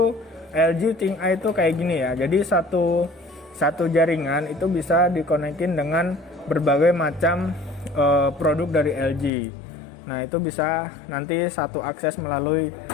LG ThinkEye itu kayak gini ya. Jadi satu jaringan itu bisa dikonekin dengan berbagai macam produk dari LG. Nah, itu bisa nanti satu akses melalui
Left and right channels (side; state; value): right; drops out; at 9.3 s